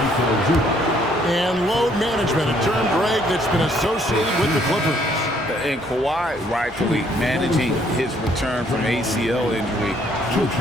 And load management, a term, Greg, that's been associated with the Clippers. And Kawhi rightfully managing his return from ACL injury with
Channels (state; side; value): normal; both; correlation 0.65